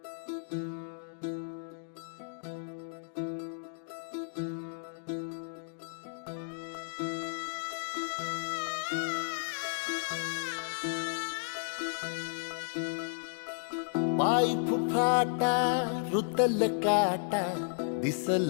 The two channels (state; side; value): silent; right; digital silence